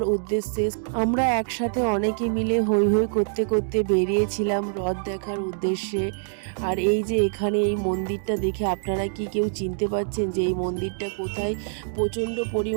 উদ্দেশ্যে। আমরা একসাথে অনেকে মিলে হৈ হৈ করতে করতে বেরিয়েছিলাম রথ দেখার উদ্দেশ্যে। আর এই যে এখানে এই মন্দিরটা দেখে আপনারা কি কেউ চিনতে পারছেন যে এই মন্দিরটা কোথায়? প্রচণ্ড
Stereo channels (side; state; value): left; silent; digital silence